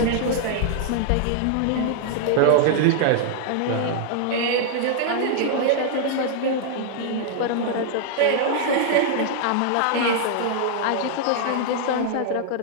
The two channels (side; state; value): both; different; correlation -0.01